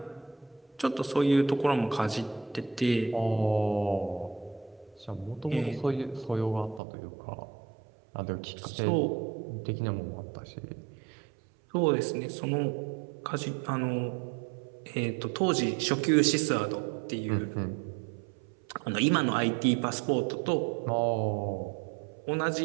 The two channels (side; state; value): left; drops out; at 6.8 s